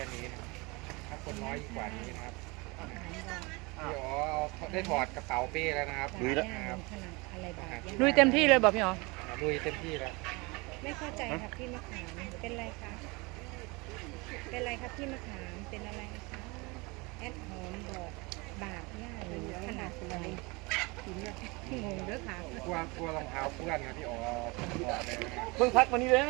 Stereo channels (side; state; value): left; quieter; 26.3 dB